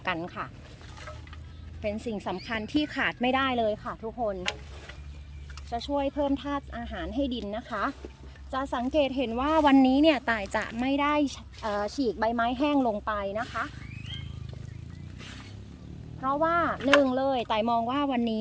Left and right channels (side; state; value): both; identical; correlation 1.00